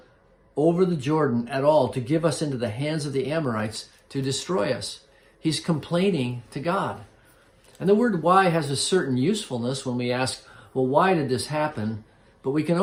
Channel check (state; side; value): identical; both; correlation 1.00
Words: over the Jordan at all to give us into the hands of the Amorites to destroy us? He's complaining to God. And the word why has a certain usefulness when we ask, well, why did this happen? But we can